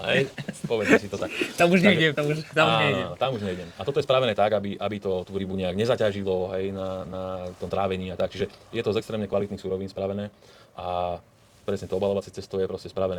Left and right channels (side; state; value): both; identical; correlation 1.00